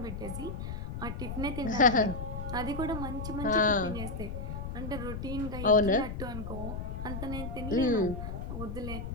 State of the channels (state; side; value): noise; left; rumble, 6 dB below the sound